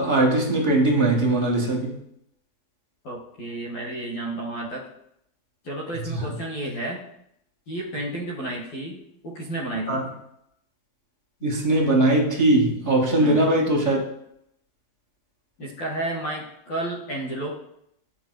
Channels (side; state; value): right; late; 12 ms